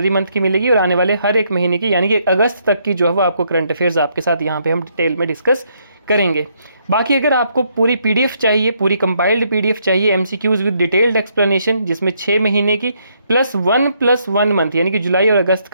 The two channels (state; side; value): inverted; both; correlation -0.73